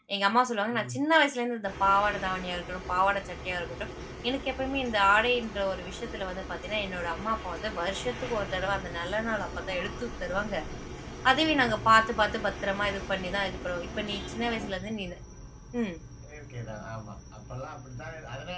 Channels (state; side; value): identical; both; correlation 1.00